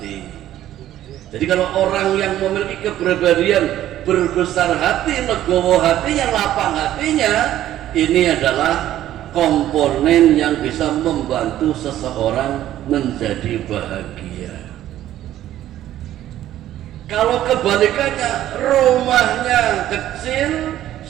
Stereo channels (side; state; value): left; quieter; 12.8 dB